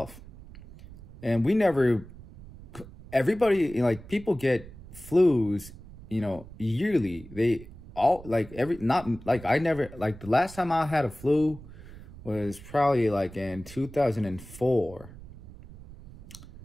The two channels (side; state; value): right; noise; rumble, 17 dB below the sound